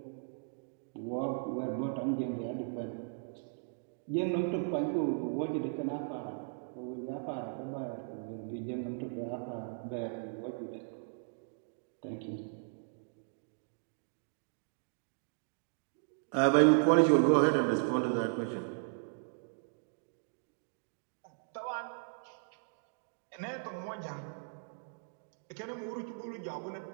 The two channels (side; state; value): left; silent; digital silence